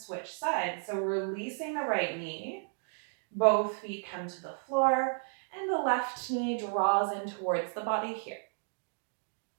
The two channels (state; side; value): silent; left; 56 dB below the other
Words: sides. So releasing the right knee, both feet come to the floor, and the left knee draws in towards the body here.